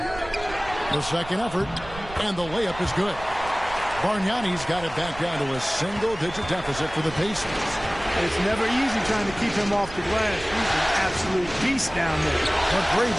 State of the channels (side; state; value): right; noise; rumble, 15 dB below the sound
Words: The second effort. And the layup is good. Bargnani's got it back down to a single-digit deficit for the Pacers. It's never easy trying to keep him off the glass. He's an absolute beast down there.